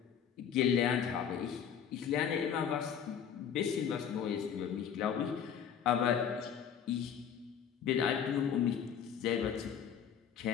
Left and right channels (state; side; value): quieter; right; 8.1 dB